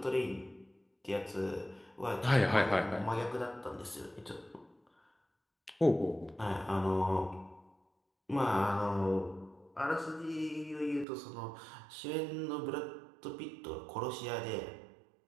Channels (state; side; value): drops out; left; at 11.1 s